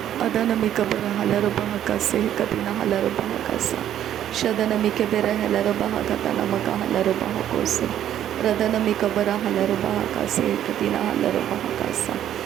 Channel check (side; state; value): left; quieter; 11.0 dB